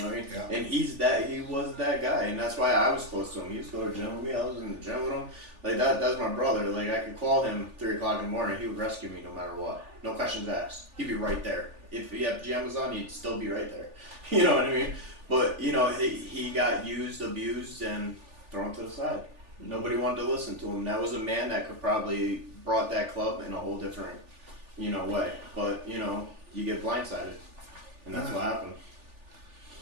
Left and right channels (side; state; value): left; late; 3.4 ms